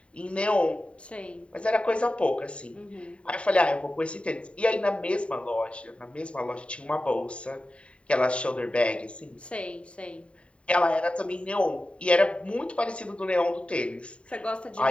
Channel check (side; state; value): right; late; 0.060 ms